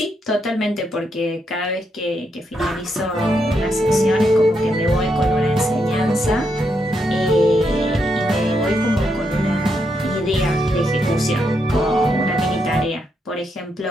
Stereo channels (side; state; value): both; normal; correlation 0.80